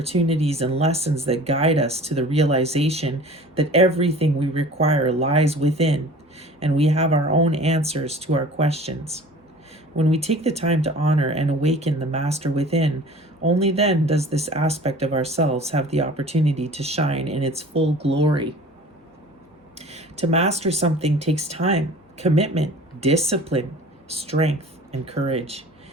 and lessons that guide us to the realization that everything we require lies within, and we have our own answers to our questions. When we take the time to honor and awaken the master within, only then does this aspect of ourselves have the opportunity to shine in its full glory. To master something takes time, commitment, discipline, strength, and courage.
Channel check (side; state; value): both; normal; correlation 0.44